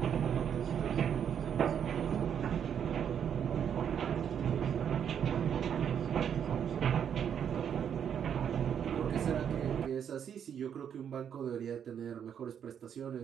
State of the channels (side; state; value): left; quieter; 8.4 dB